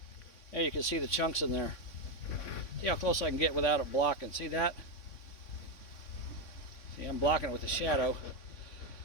Yeah, you can see the chunks in there. See how close I can get without it blocking. See that? See, I'm blocking it with the shadow.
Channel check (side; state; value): right; late; 3.6 ms